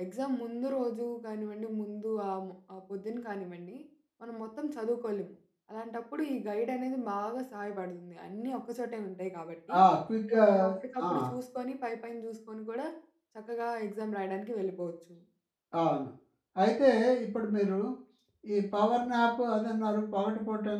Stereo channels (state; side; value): identical; both; correlation 1.00